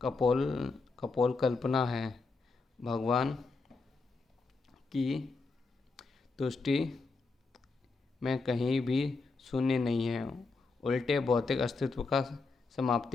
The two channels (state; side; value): quieter; right; 4.0 dB